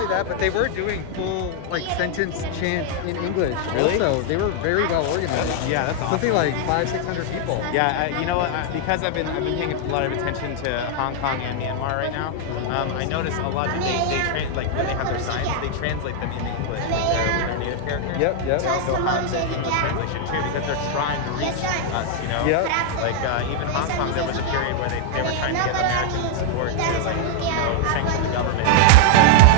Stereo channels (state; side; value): different; both; correlation 0.00